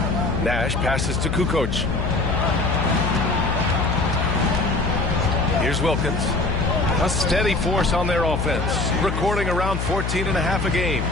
Nash passes to Kukoc. Here's Wilkins. A steady force on their offense, recording around 14.5 a game.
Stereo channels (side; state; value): left; noise; hum, 2 dB below the sound